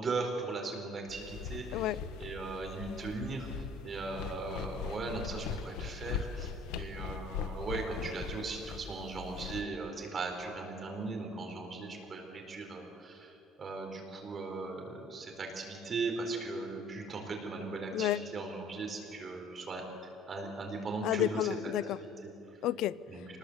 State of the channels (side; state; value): both; normal; correlation 0.53